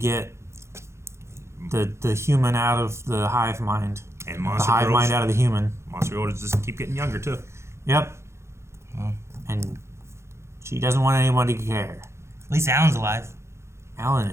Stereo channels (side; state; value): left; late; 0.13 ms